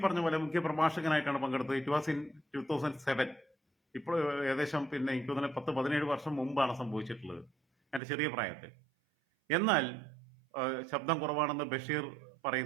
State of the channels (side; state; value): left; drops out; at 8.0 s